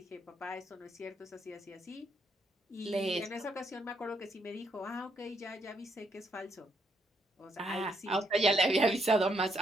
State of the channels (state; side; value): normal; both; correlation 0.75